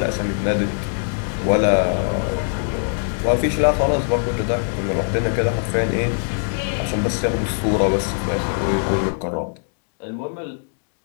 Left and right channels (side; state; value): right; silent; digital silence